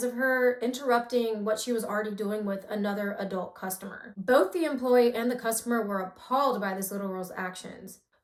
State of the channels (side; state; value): both; identical; correlation 1.00